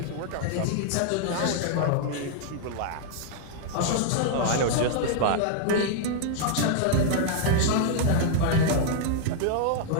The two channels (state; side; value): different; both; correlation 0.00